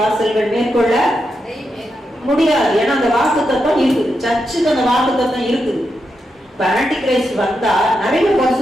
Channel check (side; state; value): both; normal; correlation 0.85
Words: மேற்கொள்ள முடியாது. ஏன்னா அந்த வாக்கு தத்துவம் இருக்குது, சர்ச்சுக்கு அந்த வாக்கு தத்துவம் இருக்குது. இப்ப ஆன்டி கிரைஸ்ட் வந்தா நிறைய